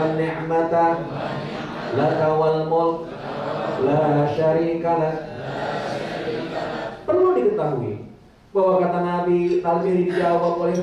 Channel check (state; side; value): identical; both; correlation 1.00